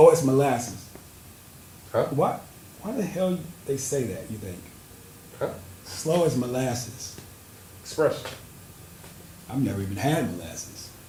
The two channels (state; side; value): identical; both; correlation 1.00